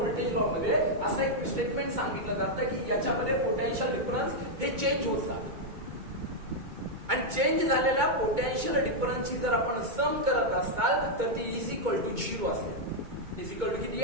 लॉ मध्ये असं एक स्टेटमेंट सांगितलं जातं की याच्यामध्ये पोटेन्शियल डिफरन्स हे चेंज होत जातं. आणि चेंज झालेल्या पोटेन्शियल डिफरन्सची जर आपण सम करत असाल तर ती इज इक्वल टू 0 असेल. इज इक्वल टू किती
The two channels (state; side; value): late; left; 2.2 ms